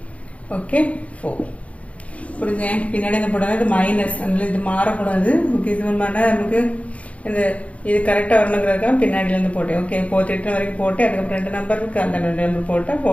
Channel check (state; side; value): late; right; 0.065 ms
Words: ஓகே 4 புரிஞ்சு பின்னாடி என்ன போடாது இது மைனஸ் அதனால இது மாறக்கூடாது ஓகே. இது மாதிரி நமக்கு இந்த இது கரெக்டாக வரணுங்கிறதுக்காக பின்னாடியிலேருந்து போட்டேன் ஓகே 48 வரைக்கும் போட்டு அதுக்கப்புறம் 2 நம்பர் இருக்கு அந்த 2 நம்பர் போட்டால்